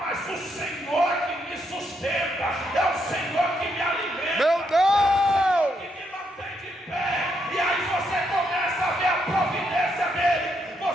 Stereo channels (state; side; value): normal; both; correlation 0.77